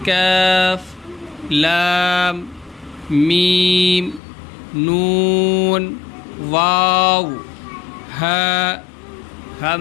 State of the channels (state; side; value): drops out; right; at 4.2 s